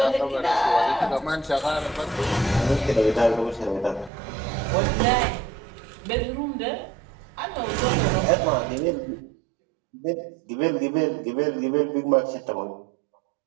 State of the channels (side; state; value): left; drops out; at 4.1 s